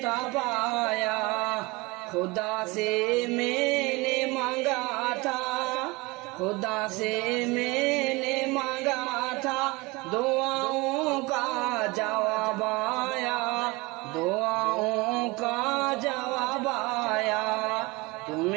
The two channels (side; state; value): left; quieter; 23.7 dB